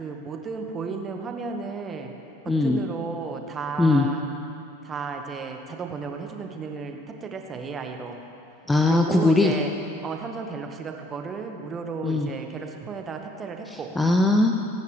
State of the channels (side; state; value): both; normal; correlation 0.68